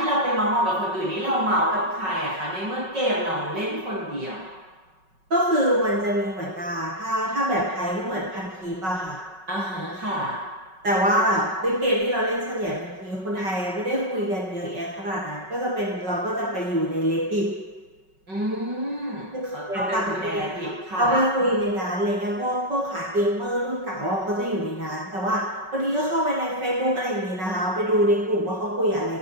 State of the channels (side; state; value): left; late; 5.3 ms